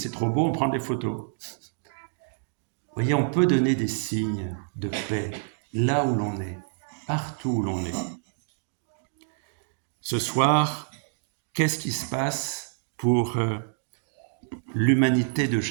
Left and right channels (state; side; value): silent; left; digital silence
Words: trop beau, on prend des photos. Vous voyez, on peut donner des signes de paix là où l'on est, partout où l'on est. Ce soir, qu'est-ce qui se passe pour l'humanité de